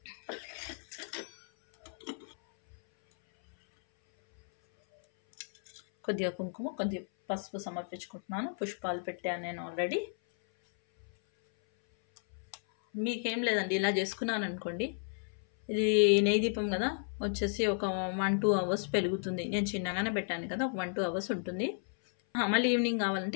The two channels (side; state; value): right; silent; 56 dB below the other